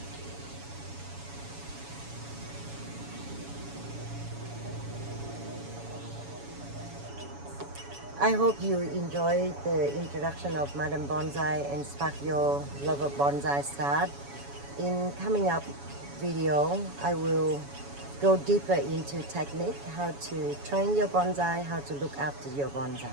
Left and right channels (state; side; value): late; left; 7.1 ms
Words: I hope you enjoyed the introduction of Madam Bonsai and spark your love of bonsai start. In coming up video, I will go deeper into technique, how to train your bonsai, how to look after your bonsai.